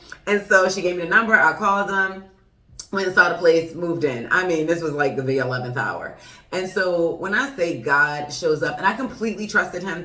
And so she gave me the number. I called them, went and saw the place, moved in. I mean, this was like the 11th hour. And so when I say God shows up, and I completely trusted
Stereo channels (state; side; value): identical; both; correlation 1.00